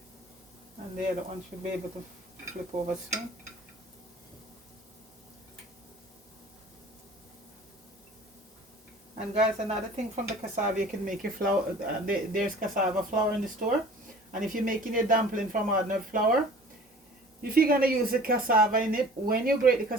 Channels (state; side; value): normal; both; correlation 0.46